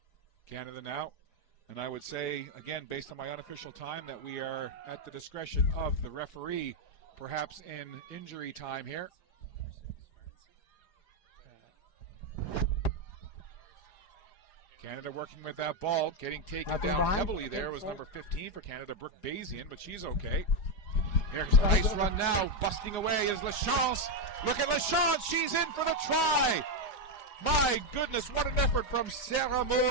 Canada now, and I would say, again, based on my unofficial time, that we are at the discretion of the referee, perhaps in injury time here. Canada working with that ball, getting taken down heavily there was number 15 for Canada, Brooke Bazian, but she's okay. Here's a nice run now. Busting away is Lachance. Look at Lachance. She's in for the try. My goodness, what an effort from Sarah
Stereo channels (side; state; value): right; late; 4.9 ms